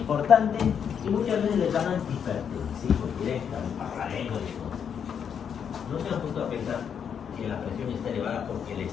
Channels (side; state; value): right; quieter; 7.7 dB